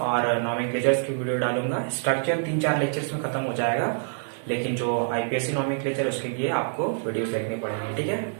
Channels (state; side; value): silent; left; digital silence